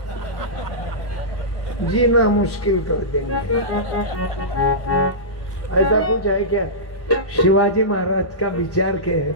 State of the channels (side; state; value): right; late; 1.1 ms